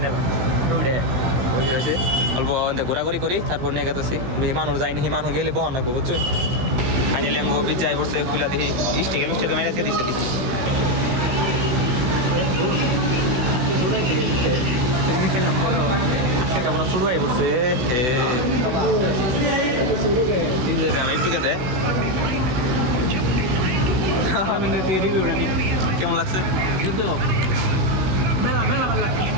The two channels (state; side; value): late; left; 16 ms